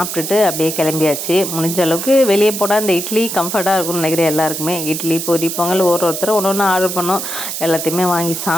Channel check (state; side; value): noise; right; hiss, 5 dB below the sound